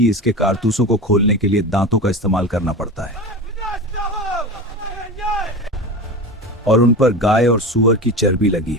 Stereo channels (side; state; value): both; normal; correlation 0.28